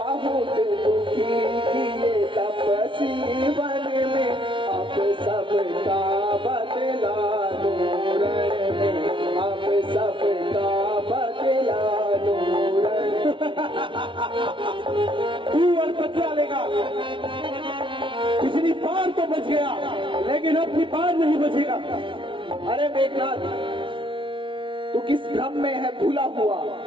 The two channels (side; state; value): left; late; 0.25 ms